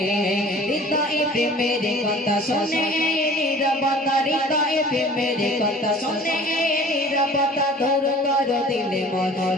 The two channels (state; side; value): normal; both; correlation 0.46